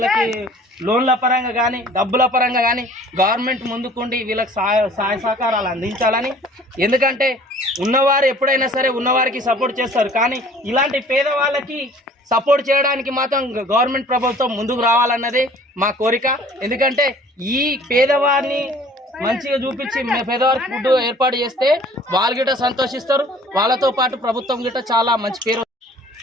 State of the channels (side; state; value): both; normal; correlation 0.51